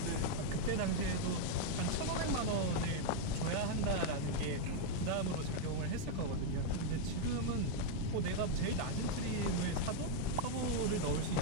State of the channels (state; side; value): different; both; correlation -0.01